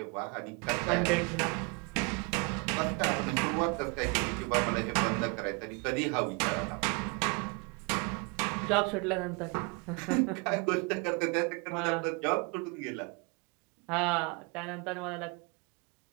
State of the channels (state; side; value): quieter; left; 30.4 dB